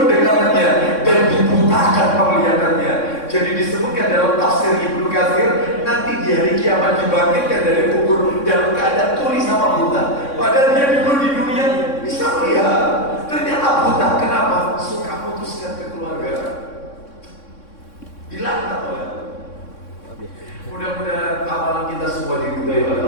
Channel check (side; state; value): right; late; 3.6 ms